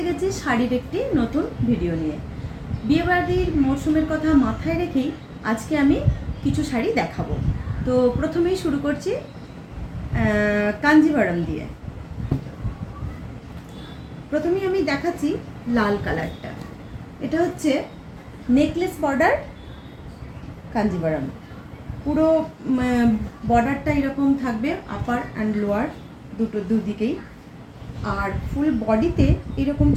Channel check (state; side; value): identical; both; correlation 1.00